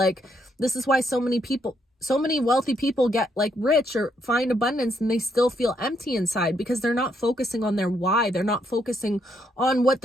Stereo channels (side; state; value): both; normal; correlation 0.75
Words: this is why so many wealthy people get like rich or find abundance and they still feel empty inside, because they're not focusing on their why. They're not focusing on what